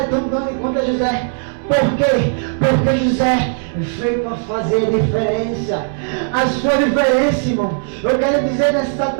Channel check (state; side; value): silent; left; 64 dB below the other